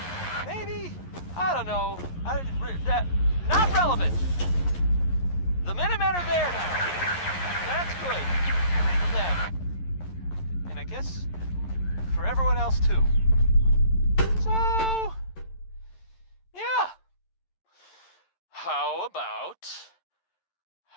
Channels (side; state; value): right; late; 11 ms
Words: Maybe? I don't know. Not relevant. The Minutemen are there now. That's good. For them. And I guess for everyone else too. So, yeah. How